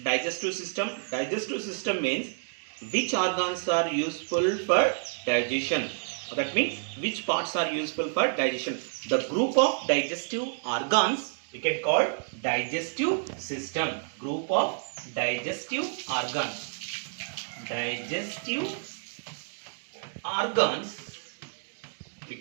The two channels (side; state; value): left; silent; digital silence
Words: digestive system? Digestive system means which organs are useful for digestion. That means which parts are useful for digestion. The group of digestive organs we can call digestive system. Group of digestive organs. Digestive organs we